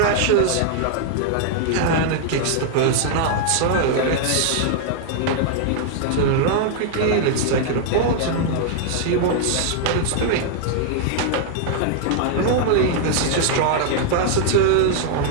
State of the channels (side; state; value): both; different; correlation -0.01